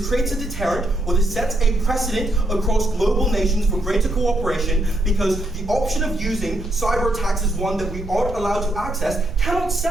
creates a deterrent or this sets a precedent across global nations for greater cooperation, because the option of using cyber attacks as one that we aren't allowed to access cannot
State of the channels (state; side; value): noise; right; rumble, 10 dB below the sound